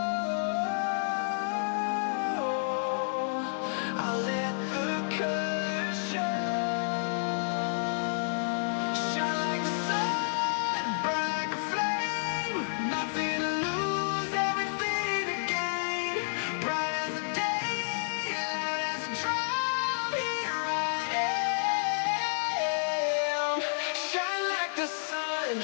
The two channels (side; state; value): right; silent; 58 dB below the other